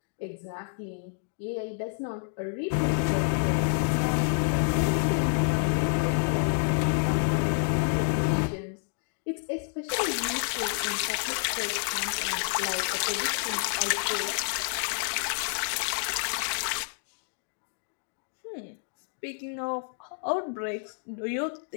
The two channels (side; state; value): right; silent; digital silence